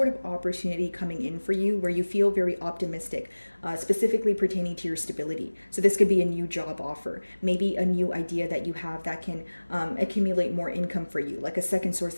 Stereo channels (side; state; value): both; inverted; correlation -1.00